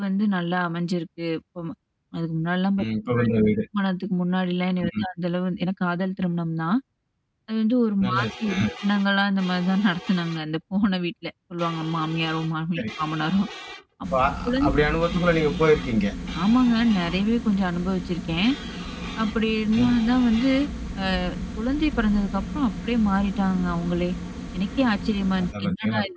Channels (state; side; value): identical; both; correlation 1.00